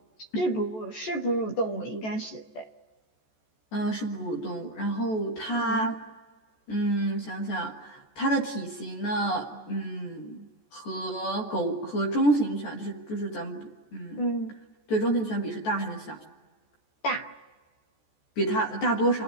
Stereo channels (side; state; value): right; late; 14 ms